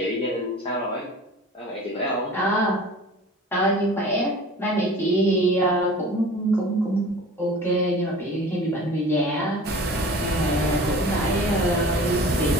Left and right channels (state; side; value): normal; both; correlation 0.41